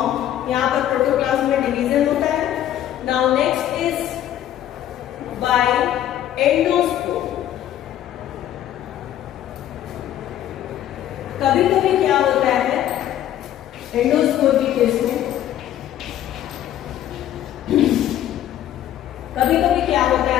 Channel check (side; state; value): right; quieter; 11.8 dB